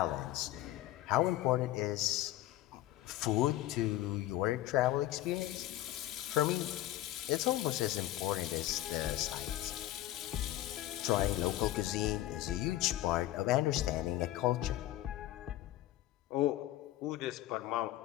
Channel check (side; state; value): right; quieter; 14.7 dB